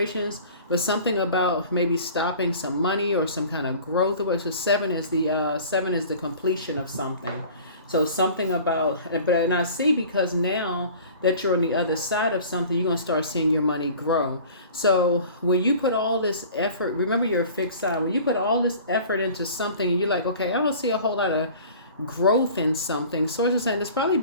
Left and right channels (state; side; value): inverted; both; correlation -0.44